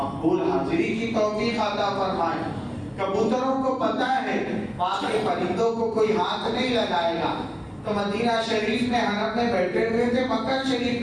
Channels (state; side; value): identical; both; correlation 1.00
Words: حاضری کی توفیق عطا فرمائے۔ کبوتروں کو پتہ ہے وہاں کے پرندوں کو کوئی ہاتھ نہیں لگائے گا، تو مدینہ شریف میں حرم میں بیٹھے ہوئے تھے، مکہ شریف